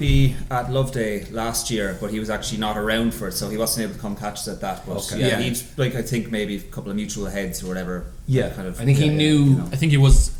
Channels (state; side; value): identical; both; correlation 1.00